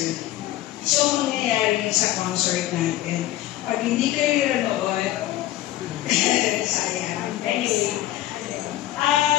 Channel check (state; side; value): quieter; right; 14.6 dB